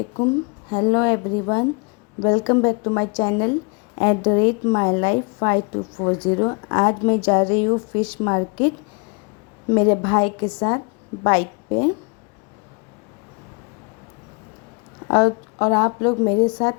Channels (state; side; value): quieter; right; 33.7 dB